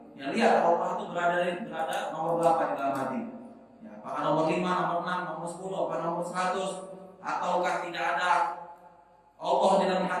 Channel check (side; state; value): both; identical; correlation 1.00